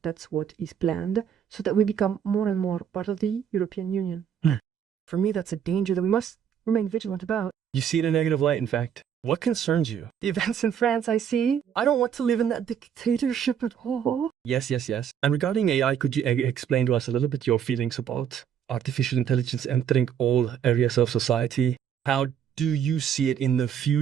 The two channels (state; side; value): quieter; left; 8.6 dB